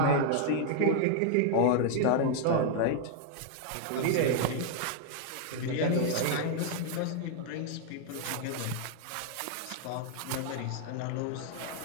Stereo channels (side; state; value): both; different; correlation 0.00